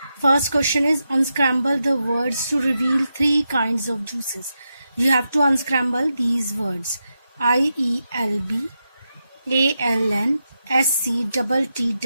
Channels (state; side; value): inverted; both; correlation -0.87